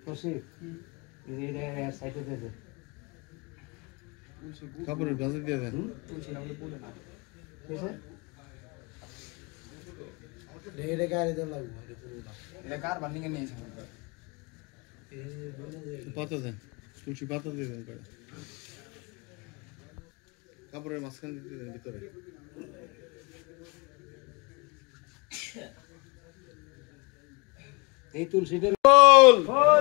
খুশি এইটা সাইডে দিয়ে দে কাপড়ের ভাঁজে দিয়ে দেন ঠিক আছে ঢেরে গাড়ি দেন লাগবে পাতা দেন তুলসী পাতা দিয়ে দেন করে কাপড়ের মাঝখানে দিয়ে দেন ভিতরে এই তুলসীদের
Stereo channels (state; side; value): quieter; right; 28.6 dB